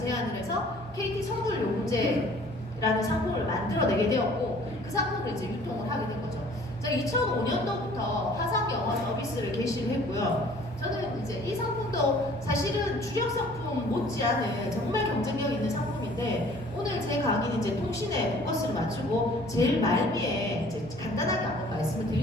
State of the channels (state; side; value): normal; both; correlation 0.53